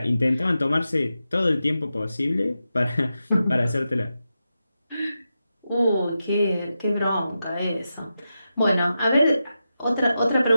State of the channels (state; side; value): inverted; both; correlation -0.89